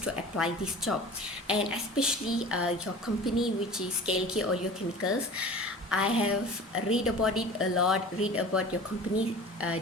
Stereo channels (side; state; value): both; normal; correlation 0.40